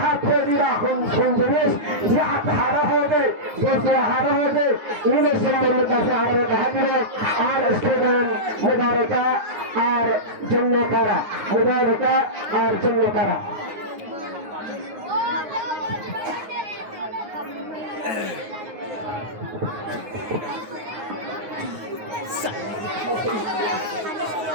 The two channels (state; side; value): late; left; 9.6 ms